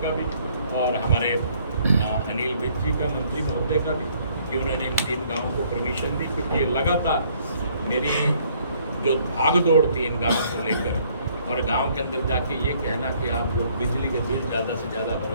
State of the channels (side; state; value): both; inverted; correlation -0.63